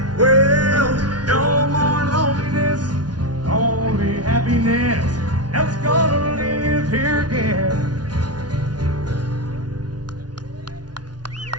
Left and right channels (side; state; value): left; late; 0.69 ms